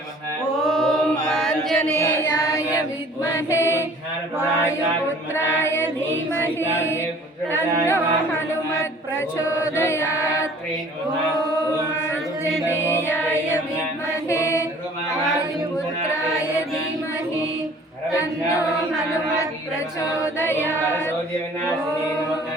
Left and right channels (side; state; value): both; normal; correlation 0.51